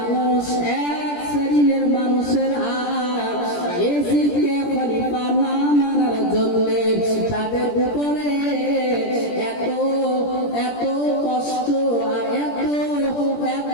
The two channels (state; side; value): late; right; 17 ms